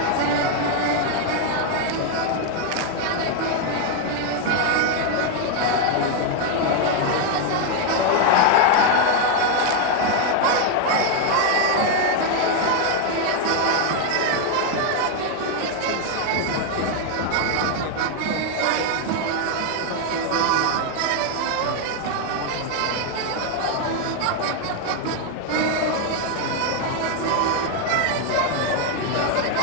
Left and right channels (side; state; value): both; different; correlation 0.01